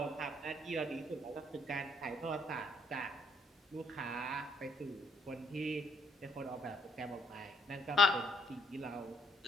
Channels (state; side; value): normal; both; correlation 0.69